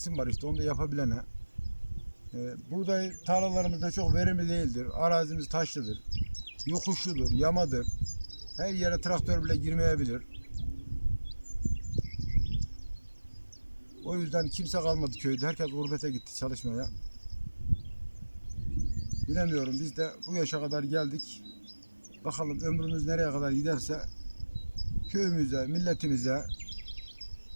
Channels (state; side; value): inverted; both; correlation -1.00